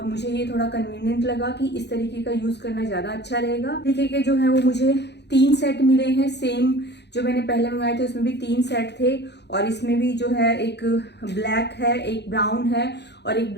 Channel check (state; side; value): late; right; 0.50 ms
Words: मुझे ये थोड़ा कन्वीनियंट लगा कि इस तरीके का यूज करना ज्यादा अच्छा रहेगा। तरीके के जो है वो मुझे 3 सेट मिले हैं। सेम जो मैंने पहले मंगाए थे उसमें भी 3 सेट थे और इसमें भी जो है एक ब्लैक है, एक ब्राउन है और एक